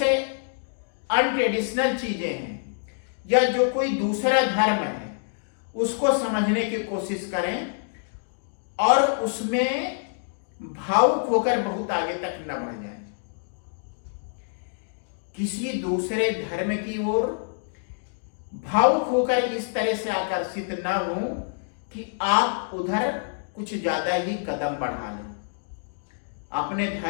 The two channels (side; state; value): right; silent; digital silence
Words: अनट्रेडिशनल चीजें हैं या जो कोई दूसरा धर्म है, उसको समझने की कोशिश करें और उसमें भावुक होकर बहुत आगे तक न बढ़ जाए। किसी दूसरे धर्म की ओर भावुक होकर इस तरह से आकर्षित न हो कि आप उधर कुछ ज्यादा ही कदम बढ़ा लें। अपने